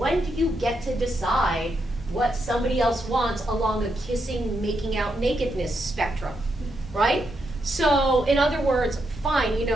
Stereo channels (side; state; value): both; normal; correlation 0.81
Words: do you get to decide what somebody else wants along a kissing, making out, nakedness spectrum, right? So, in other words, fine, you